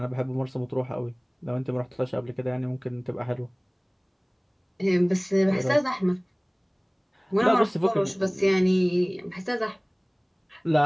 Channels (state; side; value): identical; both; correlation 1.00